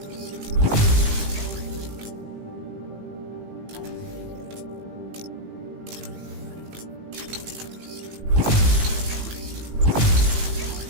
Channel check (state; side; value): late; left; 18 ms